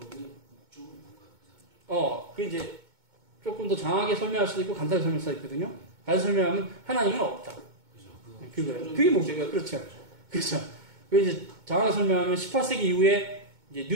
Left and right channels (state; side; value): late; left; 2.2 ms